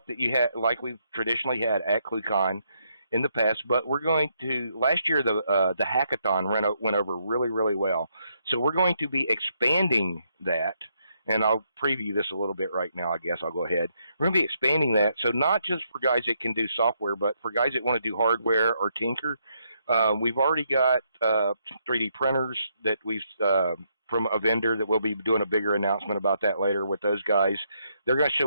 that you had, like we've traditionally had at ClueCon in the past, but we're going to, last year the hackathon went over really, really well. So we're going to be expanding that, and I'll preview this a little bit right now, I guess. I'll go ahead. We're going to be expanding that, so not just for guys that can do software, but for guys that want to do hardware or tinker. We've already got 3D printers that we've from a vendor that we'll be doing a bigger announcement about that later with those guys. They're going to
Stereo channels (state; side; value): inverted; both; correlation -0.76